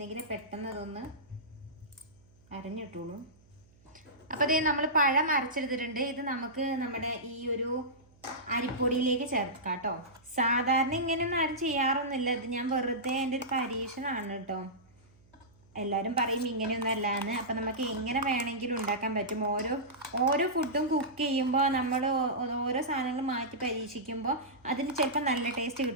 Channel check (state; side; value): noise; right; hum, 29 dB below the sound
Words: പെട്ടെന്ന് അതൊന്ന് അരിഞ്ഞിട്ടുള്ളൂ. അപ്പോൾ അതേ നമ്മൾ പഴം അരച്ചെടുത്തിട്ടുണ്ട്. ഇത് നമുക്ക് നമ്മുടെ ഈ ഒരു അരിപ്പൊടിയിലേക്ക് ചേർക്കാം കേട്ടോ. സാധാരണ ഇങ്ങനെയൊന്നും ആരും ചെയ്യാറൊന്നുമില്ല. ഇത് ഞാൻ വെറുതെ എൻ്റെ ഒരു പരീക്ഷണമാണ് കേട്ടോ. എല്ലാവരും പറയും ഇങ്ങനെയൊന്നും അല്ലാന്ന്. അപ്പം നമുക്ക് എങ്ങനെ വേണമെങ്കിലും ഉണ്ടാക്കാൻ പറ്റും. ഓരോ ഫുഡും കുക്ക് ചെയ്യുമ്പോൾ നമ്മൾ ഓരോ സാധനങ്ങൾ മാറ്റി പരീക്ഷിക്കുമ്പോൾ അതിന് ചിലപ്പോൾ നല്ല ടേസ്റ്റ്